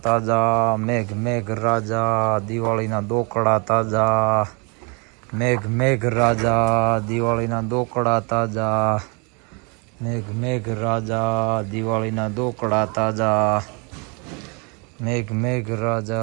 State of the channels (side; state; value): left; quieter; 32.8 dB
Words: તાજા, મેઘ મેઘ રાજા દિવાળીના દોકડા તાજા, મેઘ મેઘ રાજા દિવાળીના દોકડા તાજા, મેઘ મેઘ રાજા દિવાળીના દોકડા તાજા, મેઘ મેઘ